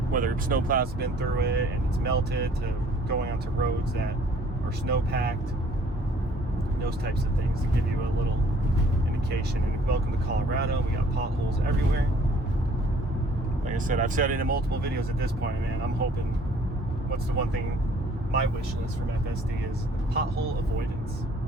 whether snowplows have been through it and it's melted, to going onto roads that are snow packed, those types of things to give you a little indication. And welcome to Colorado. We got potholes everywhere. Like I said, I've said it in multiple videos at this point, man. I'm hoping, what's the one thing, my wish list from FSD is pothole avoidance.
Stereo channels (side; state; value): both; normal; correlation 0.57